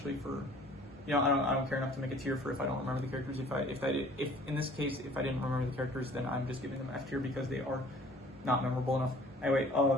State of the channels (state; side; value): normal; both; correlation 0.52